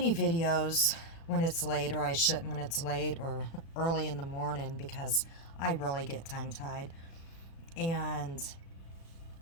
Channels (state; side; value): late; right; 36 ms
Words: videos when it's late, or I shouldn't when it's late or early in the morning, because I really get tongue tied. And